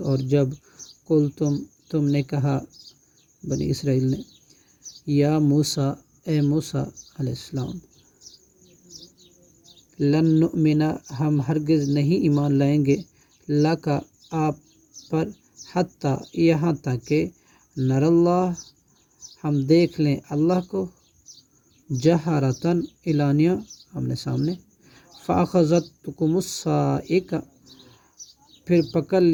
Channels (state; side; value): identical; both; correlation 1.00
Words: اور جب تم نے کہا، بنی اسرائیل نے، یا موسیٰ، اے موسیٰ علیہ السلام، لن نؤمن، ہم ہرگز نہیں ایمان لائیں گے، لک، آپ پر، حتیٰ، یہاں تک کہ، نر اللہ، ہم دیکھ لیں اللہ کو، جہرتاً، اعلانیہ، آمنے سامنے، فأخذتکم الصاعقہ، پھر پکڑ